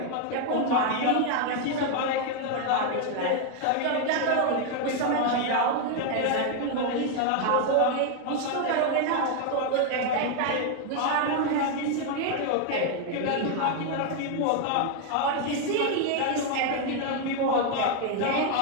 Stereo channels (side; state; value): both; different; correlation 0.01